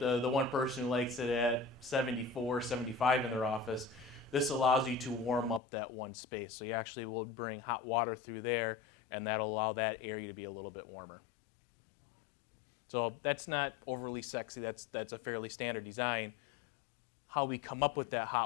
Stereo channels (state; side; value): drops out; right; at 5.6 s